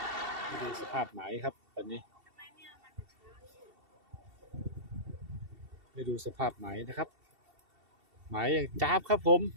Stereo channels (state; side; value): late; left; 2.7 ms